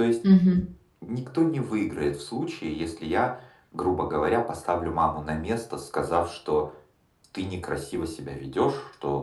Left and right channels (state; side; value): identical; both; correlation 1.00